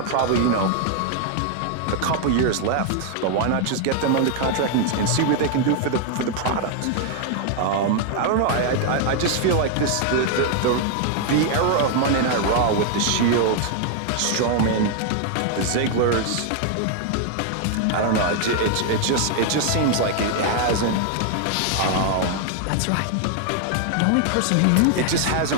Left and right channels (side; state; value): both; different; correlation 0.00